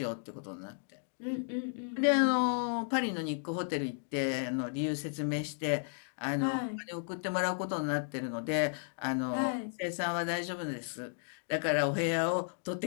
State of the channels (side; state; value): right; silent; digital silence